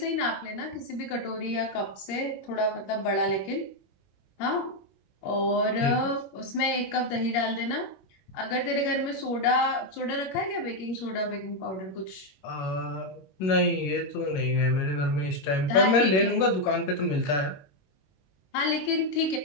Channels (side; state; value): right; late; 21 ms